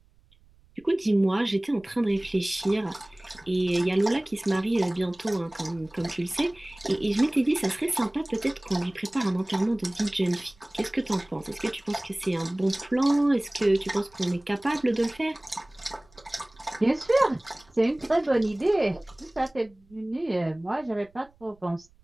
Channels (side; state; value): right; noise; rumble, 30 dB below the sound